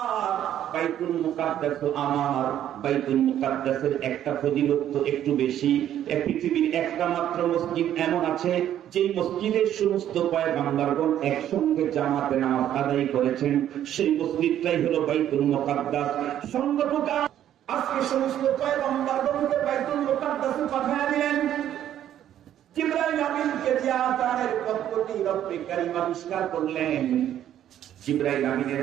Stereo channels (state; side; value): quieter; left; 11.1 dB